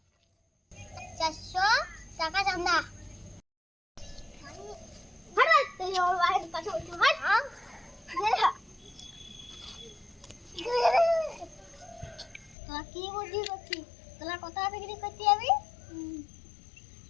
400 টাকা চাঁদা। হাট তুই ওর বাড়ির কাছে উঠে হাট। তোরা কি বুদ্ধি করছিস? তোরা কোথায় বিক্রি করতে যাবি?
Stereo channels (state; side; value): drops out; right; at 12.6 s